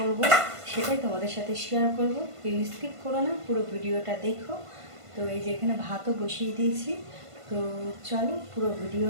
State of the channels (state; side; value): late; left; 1.5 ms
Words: সেটাই তোমাদের সাথে শেয়ার করব। প্লিজ স্কিপ করো না, পুরো ভিডিওটা দেখো। তো এই যে এখানে ভাতও বসিয়ে দিয়েছি। তো চলো পুরো